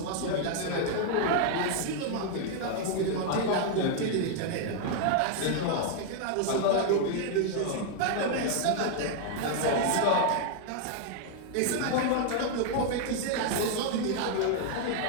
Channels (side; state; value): both; different; correlation 0.00